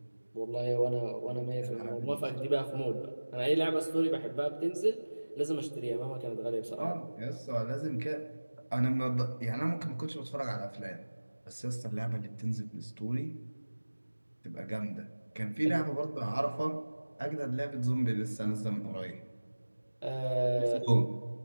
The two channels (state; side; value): inverted; both; correlation -1.00